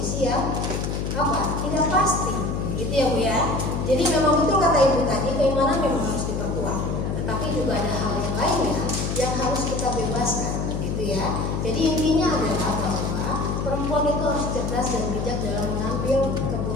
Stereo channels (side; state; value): left; noise; hum, 1 dB below the sound